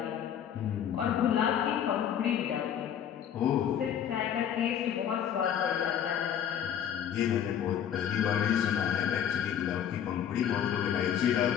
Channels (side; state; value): right; quieter; 9.3 dB